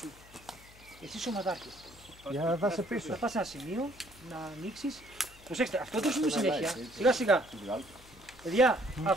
μου. Εσύ είσαι ομαδάρχης. Για να δάσει πίσω. Θα πας σε ένα σημείο να ανοίξεις. Προσέξτε, αυτό δεν σου πει συνέχεια. Σιγά σιγά. Παιδιά,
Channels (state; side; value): noise; left; hum, 23 dB below the sound